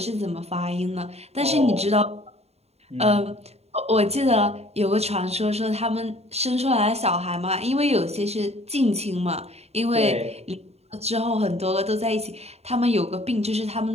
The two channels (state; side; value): late; left; 0.30 ms